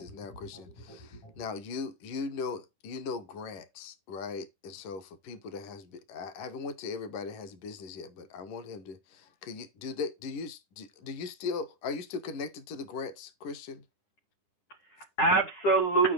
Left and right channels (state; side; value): late; right; 11 ms